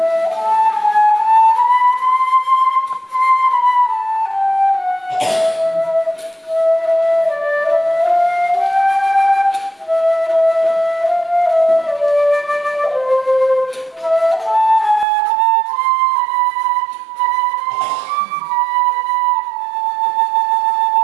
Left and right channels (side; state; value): left; drops out; at 15.1 s